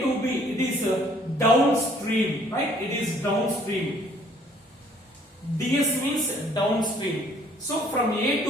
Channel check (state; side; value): normal; both; correlation 0.60